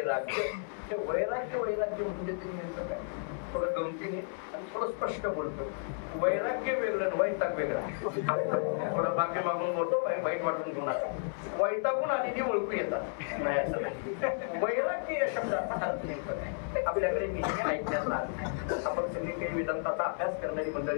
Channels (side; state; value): right; silent; 56 dB below the other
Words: हे वैराग्य वैराग्य म्हणजे ते नेमकं काय? थोडं गमतीने आणि थोडं स्पष्ट बोलतो. वैराग्य वेगळं, वैताग वेगळा. थोडं बाकी मागून बोलतो, वाईट वाटून घेऊ नका. वैतागून आलेली ओळखू येतात नाही असं नाही. वैराग्य या शब्दाचा अर्थ नेमकं काय आपल्याकडे नेहमी ऐकण्यात आला नाही. आपण सगळी काही वेदांताचा अभ्यास करणारी